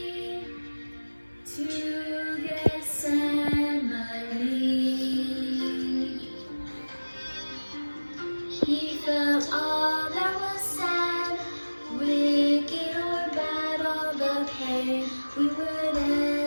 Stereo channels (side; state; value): both; inverted; correlation -1.00